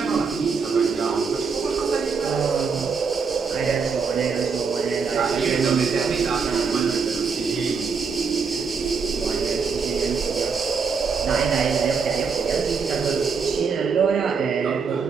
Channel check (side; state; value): left; quieter; 5.4 dB